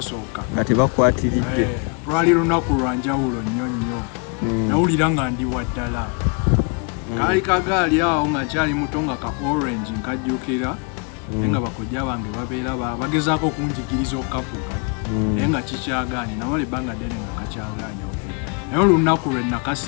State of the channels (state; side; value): quieter; right; 33.3 dB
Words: nga tebakwatiridde lwali lunaku lwa njawulo nnyo nnyo nawulira nga ndi waddala kaali kagaali awo nga nkyali muto nga ka orange nkajjukira naye nga bakojja bange babeera bagezaako okunjigiriza okukavuga naye nga kikyagaanye namala ebbanga ddene nga kakyagaanye okuli naye olunaku lwe